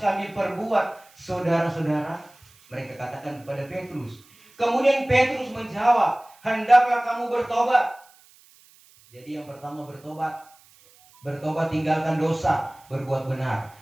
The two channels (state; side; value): noise; right; hiss, 28 dB below the sound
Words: perbuat, saudara-saudara?" Mereka katakan kepada Petrus. Kemudian Petrus menjawab, "Hendaklah kamu bertobat." Jadi yang pertama bertobat. Bertobat, tinggalkan dosa, berbuat benar.